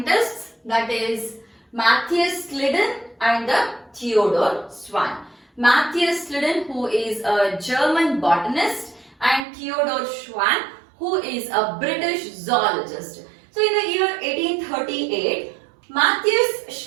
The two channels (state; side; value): drops out; left; at 9.5 s